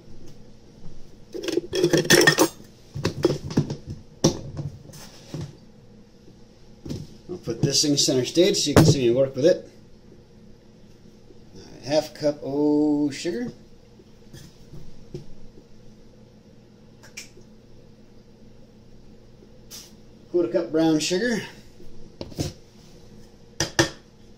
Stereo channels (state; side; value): identical; both; correlation 1.00